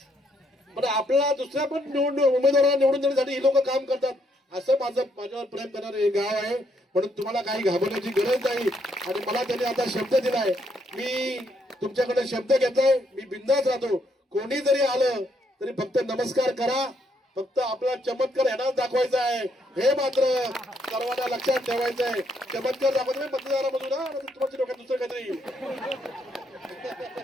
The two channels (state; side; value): normal; both; correlation 0.73